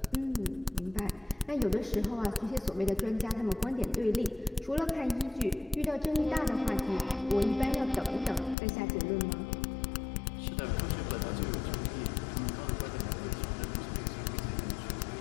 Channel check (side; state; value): right; drops out; at 8.6 s